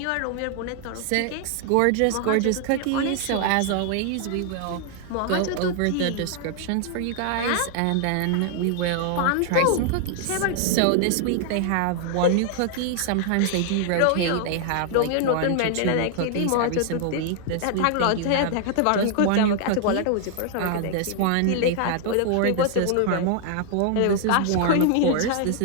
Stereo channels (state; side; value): different; both; correlation 0.00